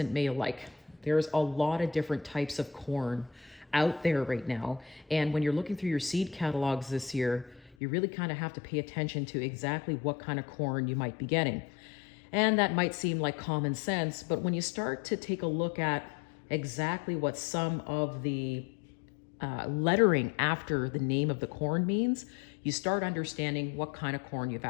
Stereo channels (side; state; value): right; drops out; at 7.8 s